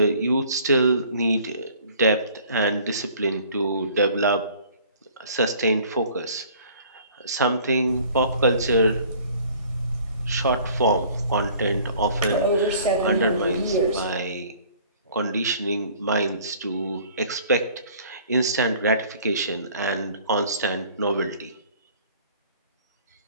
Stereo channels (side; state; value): both; inverted; correlation -0.53